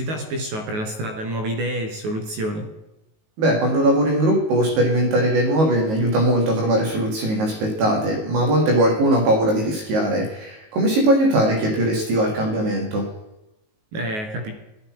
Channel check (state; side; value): late; left; 19 ms